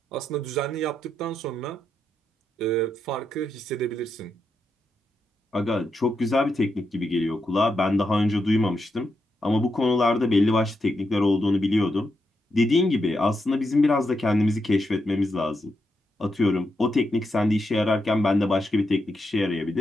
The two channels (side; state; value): both; normal; correlation 0.84